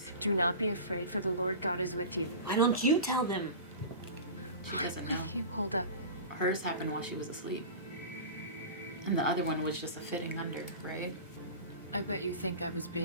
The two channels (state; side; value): inverted; both; correlation -0.33